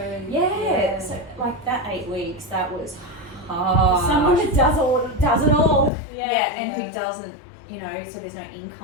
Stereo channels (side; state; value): right; drops out; at 5.9 s